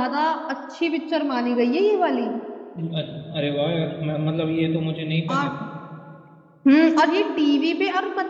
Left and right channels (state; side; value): identical; both; correlation 1.00